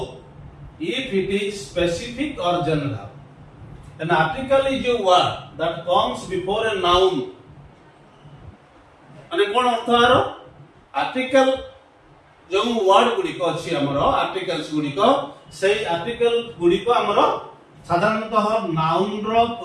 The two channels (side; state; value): both; identical; correlation 1.00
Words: if it is specific or general. An article is a word that comes before a noun. माने कोन अर्थ आरो article जो word गुडी को अछि हमरो articles गुडी को सेही article गुडी को हमरो साधारणतः नाउन रो